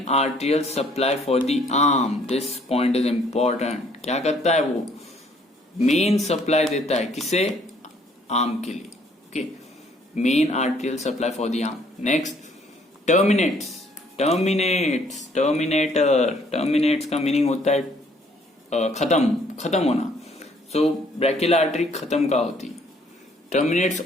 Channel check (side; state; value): both; normal; correlation 0.63